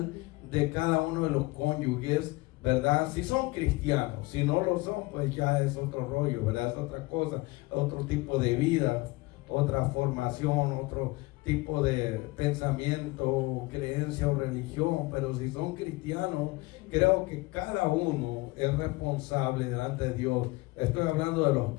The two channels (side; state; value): right; quieter; 22.2 dB